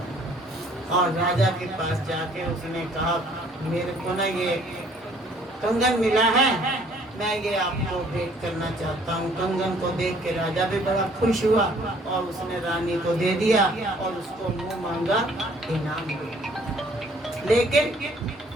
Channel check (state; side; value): normal; both; correlation 0.59